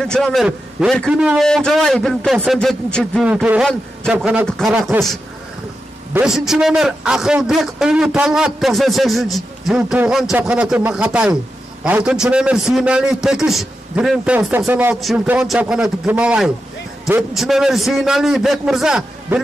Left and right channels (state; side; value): normal; both; correlation 0.89